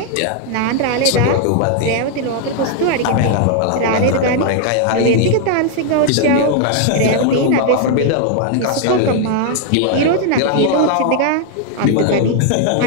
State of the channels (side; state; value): both; different; correlation 0.00